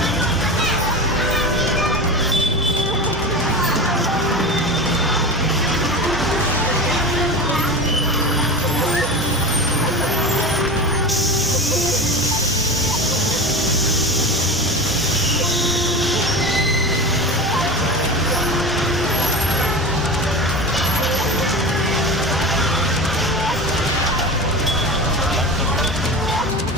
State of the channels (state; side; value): normal; both; correlation 0.28